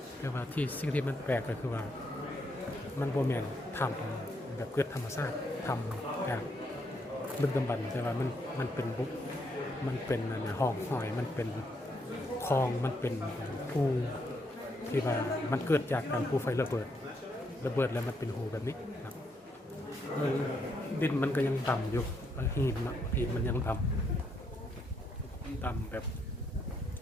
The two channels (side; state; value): both; normal; correlation 0.76